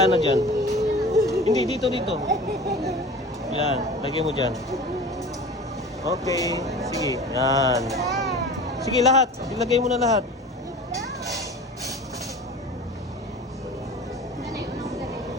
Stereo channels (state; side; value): normal; both; correlation 0.37